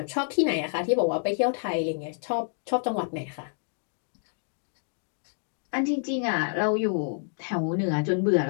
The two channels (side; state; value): right; silent; digital silence